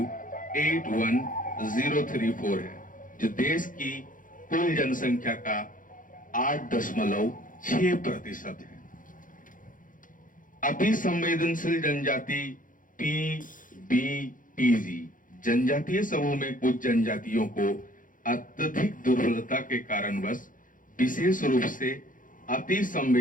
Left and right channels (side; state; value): right; late; 0.39 ms